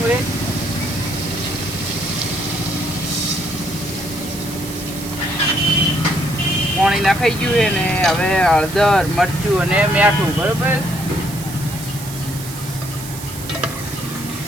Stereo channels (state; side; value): noise; right; hiss, 12 dB below the sound